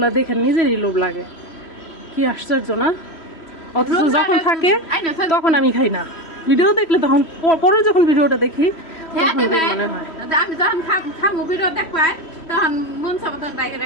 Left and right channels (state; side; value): late; right; 3.1 ms